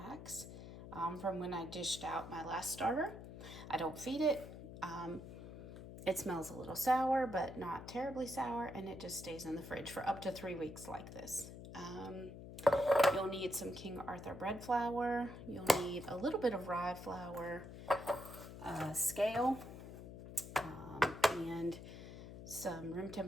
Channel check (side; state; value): left; noise; hum, 12 dB below the sound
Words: from when I dished out my last starter. I don't feed it. It smells a little sour, but not terribly sour, and it just stays in the fridge for up to 3 weeks like this. You'll need some King Arthur bread flour. You'll need a little bit of rye flour, a scale, and some room